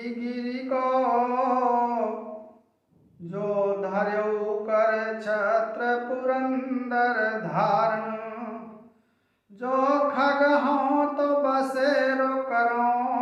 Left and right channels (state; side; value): identical; both; correlation 1.00